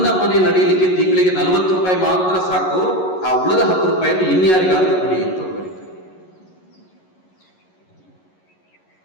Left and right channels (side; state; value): right; late; 11 ms